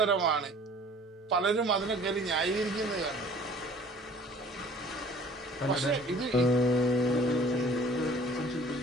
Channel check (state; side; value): normal; both; correlation 0.49